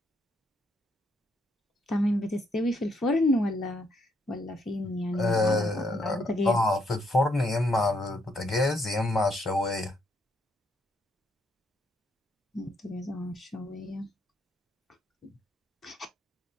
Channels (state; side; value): normal; both; correlation 0.74